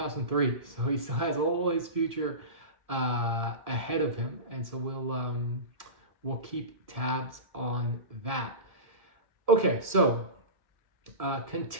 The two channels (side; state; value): left; late; 1.7 ms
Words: so he still has all his future ahead of him, and so we'll keep tabs on that. Okay, so